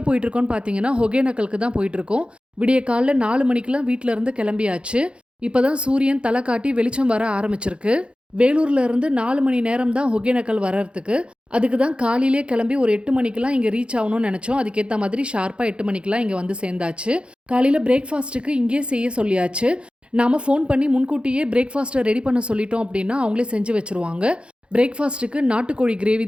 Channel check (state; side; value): late; left; 0.057 ms